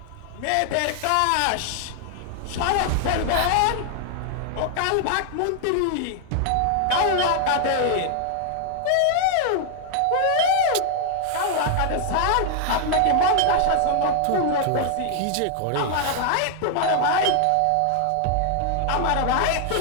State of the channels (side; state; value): both; different; correlation 0.00